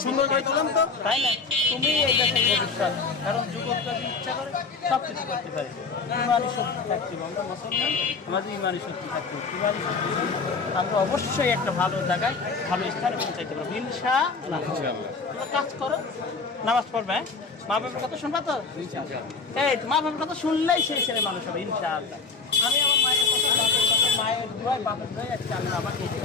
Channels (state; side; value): quieter; right; 4.5 dB